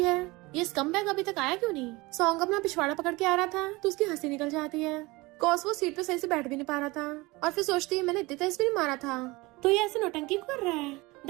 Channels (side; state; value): left; quieter; 22.8 dB